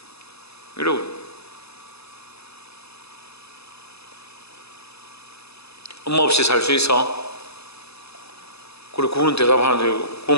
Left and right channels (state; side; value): late; right; 0.79 ms